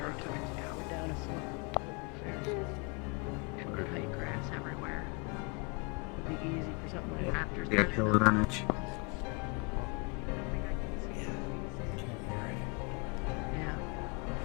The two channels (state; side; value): quieter; right; 32.2 dB